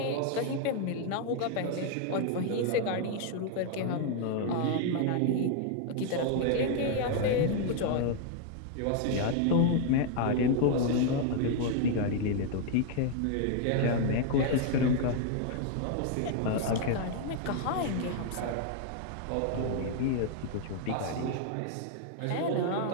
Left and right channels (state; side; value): different; both; correlation 0.00